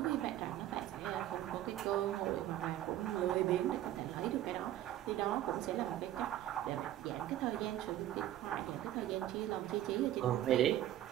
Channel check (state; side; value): quieter; left; 13.0 dB